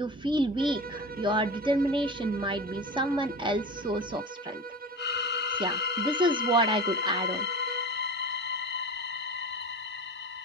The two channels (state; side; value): normal; both; correlation 0.31